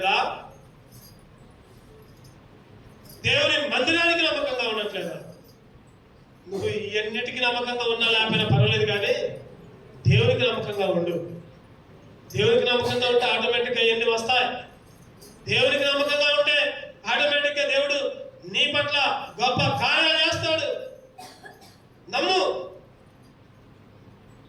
దేవుని మందిరానికి నమ్మకంగా ఉండట్లేదా? నువ్వు ఇవన్నిటికీ నమ్మకంగా ఉన్నా లేకపోయినా పర్వాలేదు, కానీ దేవునికి నమ్మకంగా ఉండు. దేవునికి నమ్మకంగా ఉంటే ఆటోమేటిక్గా ఇవన్నీ వస్తాయి. దేవునికి నమ్మకంగా ఉంటే ఆటోమేటిక్గా దేవుడు నీ పట్ల గొప్ప కార్యాలు చేస్తాడు. నమ్ము.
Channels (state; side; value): identical; both; correlation 1.00